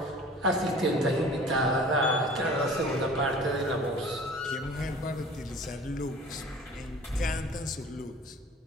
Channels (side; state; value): both; normal; correlation 0.45